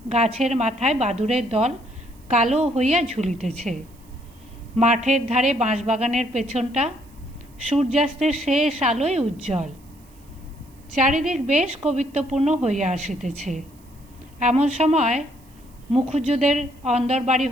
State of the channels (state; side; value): noise; right; hiss, 29 dB below the sound